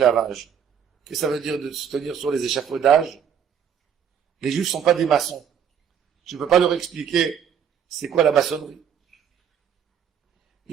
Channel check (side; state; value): left; quieter; 8.2 dB